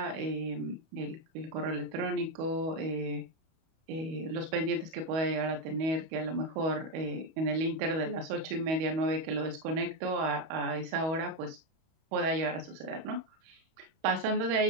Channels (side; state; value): left; late; 31 ms